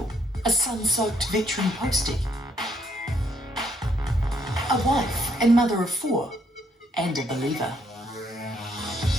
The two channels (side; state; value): both; normal; correlation 0.70